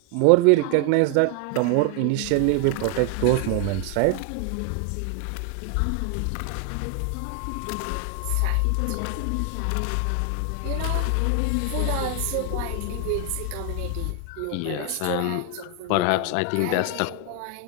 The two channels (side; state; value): both; different; correlation 0.00